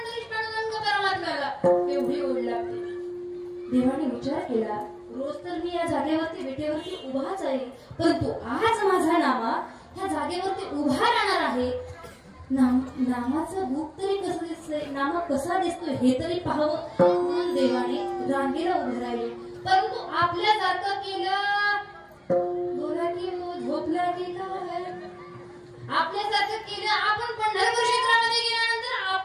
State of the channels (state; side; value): identical; both; correlation 1.00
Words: पांडुरंग परमात्म्याला, एवढी ओढ लागते. देवाने विचार केला, रोज तर मी या जागेवरती विटेवरती उभाच आहे, परंतु आज माझा नामा ह्या जागेवरती उभा राहणार आहे. नामाचं रूप तरी कसं दिसतंय, नामा कसा दिसतोय हे तरी पाहावं म्हणून देवाने रांगेला उभे राहिले. परंतु आपल्यासारखं केलं, बोला की झोपला की काय, आपल्यासारखं केलं. आपण पंढरपूर क्षेत्रामध्ये गेल्यानंतर